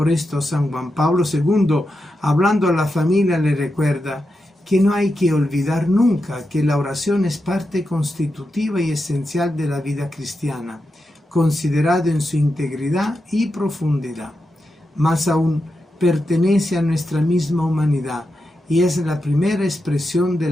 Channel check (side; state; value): both; normal; correlation 0.88